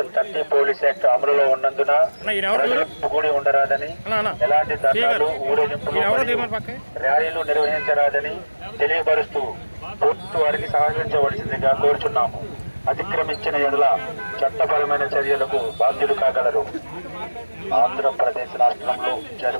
30 పోలీస్ యాక్ట్ అమలులో ఉన్నందున కూడి ఉండరాదని, ఎలాంటి ధర్నాలు, ఊరేగింపులు, ర్యాలీలు నిర్వహించరాదని తెలియపరుస్తూ ప్రభుత్వ వారికి సహకరించవలసిందిగా కోరుచున్నాము. అతిక్రమించిన ఎడల చట్టపరమైన చర్యలకు బాధ్యులు కాగలరు. ఆంధ్రప్రదేశ్ రాష్ట్రంలో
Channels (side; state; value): both; inverted; correlation -1.00